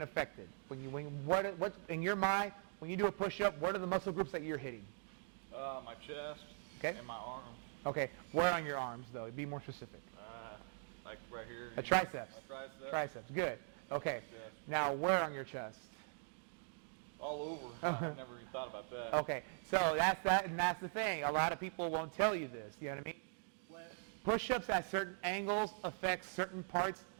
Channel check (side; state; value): left; silent; digital silence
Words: affected? What in your mind, when you do a push-up, what are the muscle groups that you're hitting? My chest. Okay. And my arms. Okay, where on your arms though? Be more specific. Like right here. A triceps. A tricep. Triceps. Good. Okay. Yeah. Now where on your chest? All over. I never even thought about that. Okay, so that's the thing. A lot of people won't tell you this. You know what I mean? When push-ups at certain angles affect certain parts